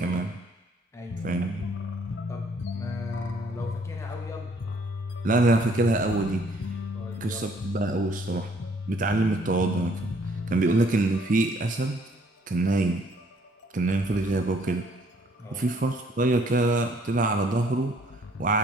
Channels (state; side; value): normal; both; correlation 0.63